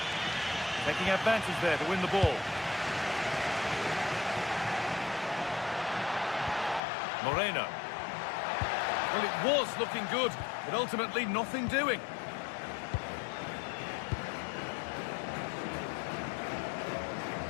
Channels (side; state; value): right; drops out; at 6.8 s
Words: Taking advantage there to win the ball. Moreno. Well, it was looking good, but ultimately nothing doing.